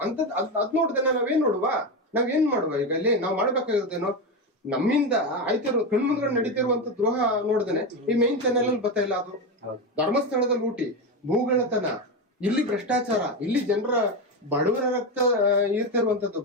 ಅದ್ ನೋಡ್ದೆ ನಾವೇನ್ ನಾವೇನ್ ಮಾಡುವ? ಈಗ ಇಲ್ಲಿ ನಾವ್ ಮಾಡ್ಬೇಕಾಗಿರೋದೇನೋ, ನಮ್ಮಿಂದ ಆಯ್ತಿರೋ ಕಣ್ಮುಂದ್ಗಡೆ ನಡೀತಿರುವಂತ ದ್ರೋಹ ನೋಡ್ದೇನೆ ಈ ಮೈನ್ ಚಾನೆಲ್ ಅಲ್ಲಿ ಬರ್ತಾ ಇಲ್ಲ. ಅದು ಧರ್ಮಸ್ಥಳದ ಲೂಟಿ, ಭೂಗಳತನ, ಇಲ್ಲಿ ಭ್ರಷ್ಟಾಚಾರ, ಇಲ್ಲಿ ಜನರ ಬಡವರ ರಕ್ತ ಇರ್ತಿರುವಂತದ್ದು,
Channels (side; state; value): both; normal; correlation 0.14